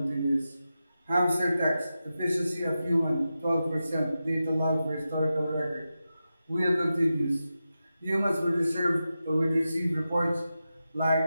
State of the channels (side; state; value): both; inverted; correlation -0.91